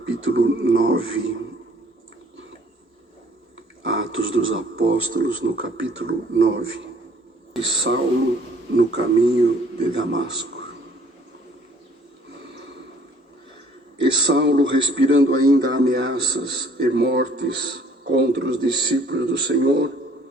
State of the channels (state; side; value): normal; both; correlation 0.58